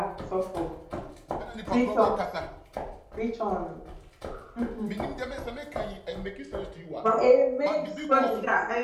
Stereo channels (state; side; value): identical; both; correlation 1.00